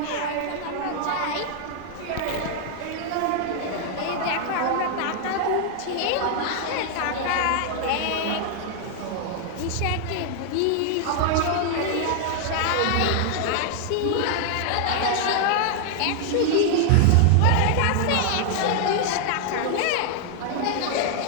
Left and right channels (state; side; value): different; both; correlation 0.00